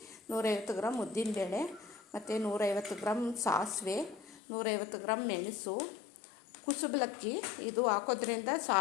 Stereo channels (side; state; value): right; drops out; at 4.4 s